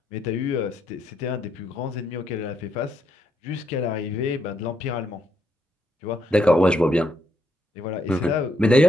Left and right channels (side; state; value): both; normal; correlation 0.77